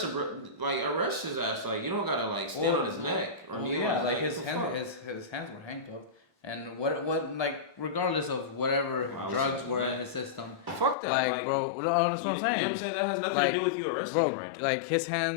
him, bro, like arrest his ass. Like you don't gotta like stand on his neck or kneel on his neck. his hands were handcuffed. And what like regardless of whatever drugs were in his system. Fuck that, like bro. That's what I'm saying. You know what I'm saying? That has nothing to do with you arresting him right now. Like his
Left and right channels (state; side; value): drops out; right; at 11.0 s